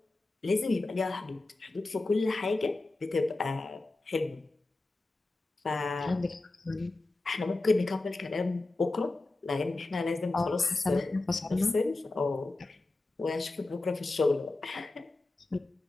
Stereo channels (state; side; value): quieter; right; 3.1 dB